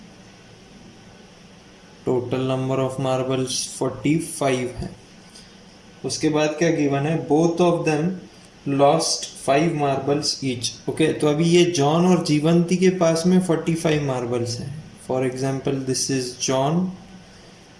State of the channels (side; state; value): both; identical; correlation 1.00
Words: टोटल नंबर ऑफ मार्बल्स 45 है. उसके बाद क्या गिवन है? Both of them lost 5 marbles each. Okay, तो अभी ये जॉन और जीवंती के पास में 45 मार्बल्स हैं. For example, this is John